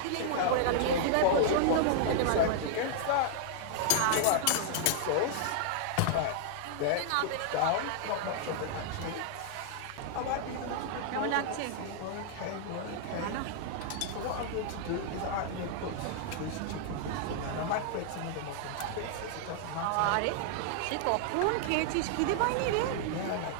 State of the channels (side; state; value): both; different; correlation -0.01